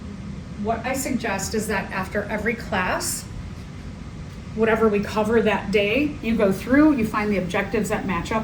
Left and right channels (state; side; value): identical; both; correlation 1.00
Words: What I suggest is that after every class, whatever we cover that day, you go through, you find the objectives that match